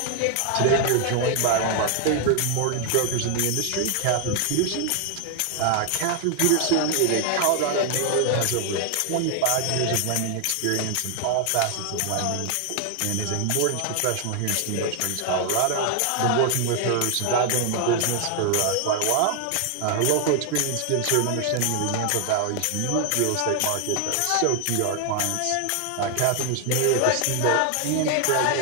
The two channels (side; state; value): both; different; correlation 0.00